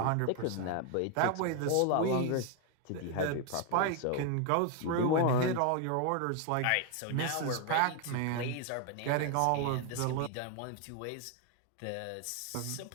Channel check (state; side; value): different; both; correlation 0.01